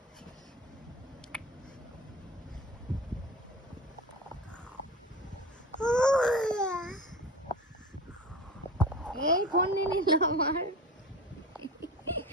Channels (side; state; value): both; normal; correlation 0.32